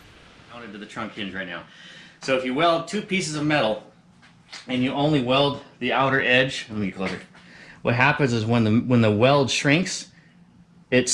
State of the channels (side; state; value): both; identical; correlation 1.00